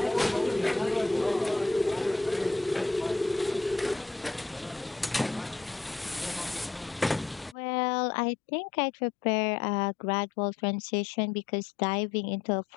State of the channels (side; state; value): right; drops out; at 7.6 s